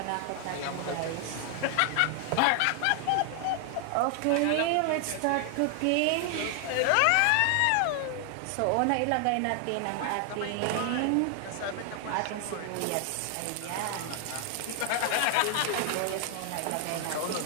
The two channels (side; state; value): both; different; correlation 0.00